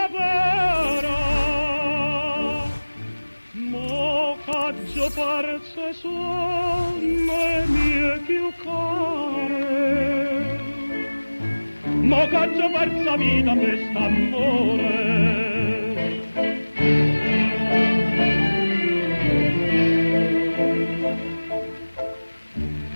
mo caggio parse sonne mie più care, mo caggio persa vita quest'amore.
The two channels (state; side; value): inverted; both; correlation -1.00